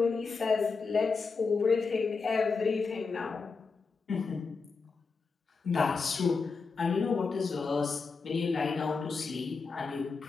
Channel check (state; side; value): quieter; right; 4.7 dB